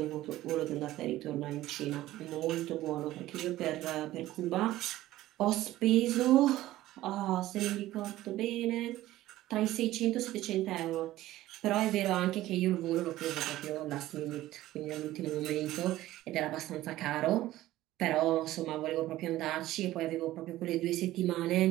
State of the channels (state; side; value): quieter; left; 15.4 dB